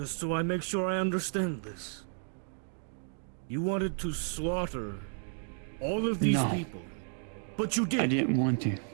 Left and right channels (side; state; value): left; silent; 56 dB below the other